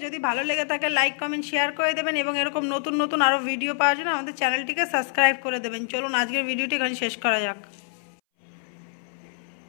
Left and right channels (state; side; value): silent; right; 61 dB below the other